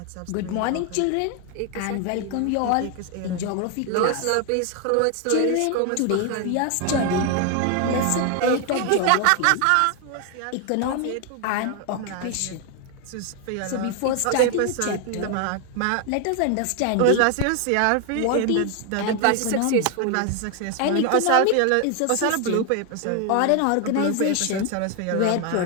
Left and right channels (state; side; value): different; both; correlation 0.01